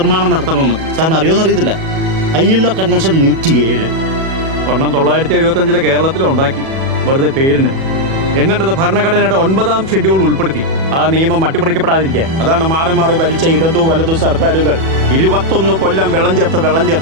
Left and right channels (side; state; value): left; late; 37 ms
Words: നടത്തണമെന്ന്. സാറിന് അറിയുമെന്നറിയത്തില്ല. ILO കൺവെൻഷൻ 107 1975 കേരളത്തിലുണ്ടാക്കി, വെറുതെ പേരിന്. എന്നിട്ടത് ഭരണഘടനയുടെ 9ാം ഷെഡ്യൂൾ ഉൾപ്പെടുത്തി ആ നിയമം അട്ടിമറിക്കപ്പെടാതിരിക്കാൻ. അതാണ് മാറി മാറി ഭരിച്ച ഇടതു വലതു സർക്കാരുകൾ 21 കൊല്ലം വെള്ളം